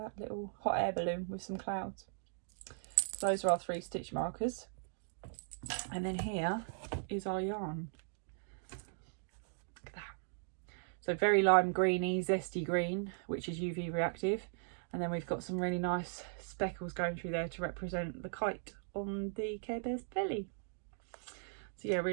little hot air balloon with some clouds. So those are our 3 stitch markers. And then here is our yarn. Look at that. So very lime greeny, zesty green, which is UV reactive. And then we've got some really nice speckles going through there to represent the kite on the Care Bear's belly. So So yeah,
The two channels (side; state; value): left; silent; digital silence